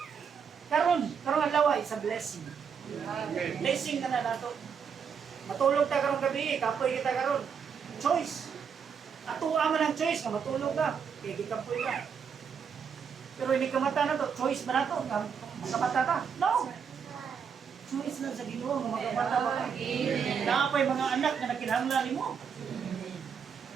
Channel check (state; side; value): quieter; left; 6.8 dB